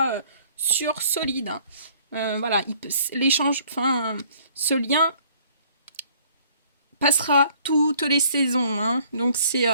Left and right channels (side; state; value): both; inverted; correlation -0.58